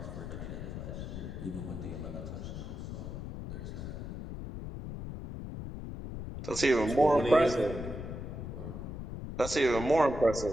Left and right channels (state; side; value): noise; left; rumble, 7 dB below the sound